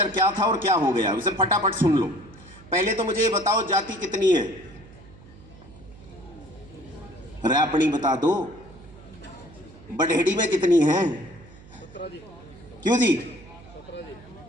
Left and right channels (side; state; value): right; noise; hum, 21 dB below the sound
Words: क्या था और क्या हो गया, उसे फटाफट सुन लो। पहले तो मुझे ये बताओ जाति कितनी है? रैपणी बता दो। बड़ेड़ी में कितनी है? क्यों जी?